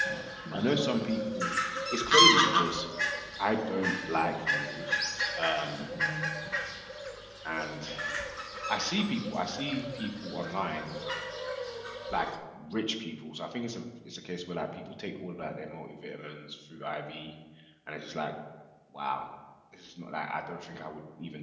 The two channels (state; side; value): identical; both; correlation 1.00